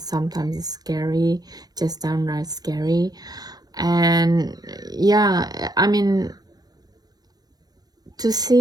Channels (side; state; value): left; late; 0.19 ms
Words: Sometimes it's scary, just downright scary. And yeah, I mean, to